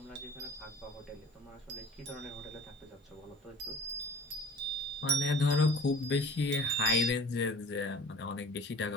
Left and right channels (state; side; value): normal; both; correlation 0.44